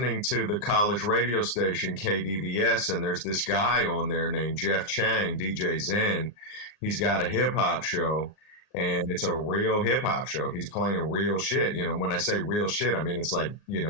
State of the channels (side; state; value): right; late; 39 ms